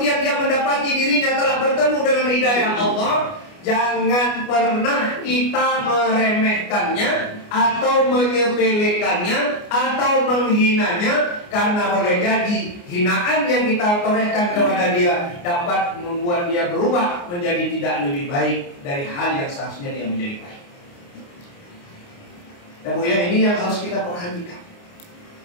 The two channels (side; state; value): right; late; 29 ms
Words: dia mendapati dirinya telah bertemu dengan hidayah Allah, jangan pernah kita meremehkannya atau menyepelekannya atau menghinanya, karena boleh jadi hinaan yang kita torehkan kepada dia dapat membuat dia berubah menjadi tidak lebih baik dari hal yang seharusnya dia menjadi baik. Dan Bu ya, ini yang harus kita perhatikan.